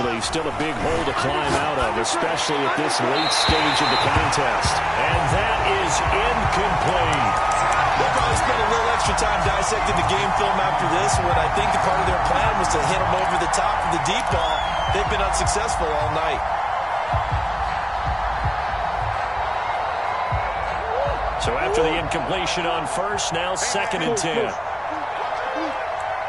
still a big hole to climb out of, especially at this late stage of the contest. And that is incomplete. They'll probably spend a little extra time dissecting the game film after this, when I think the part of their plan was to hit them over the top of the deep ball. They've been unsuccessful all night. So after the incompletion on first, now 2nd and 10.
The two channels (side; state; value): both; identical; correlation 1.00